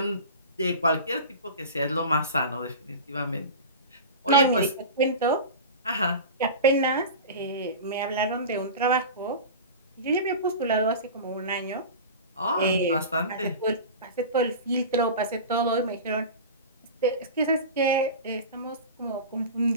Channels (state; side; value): inverted; both; correlation -0.31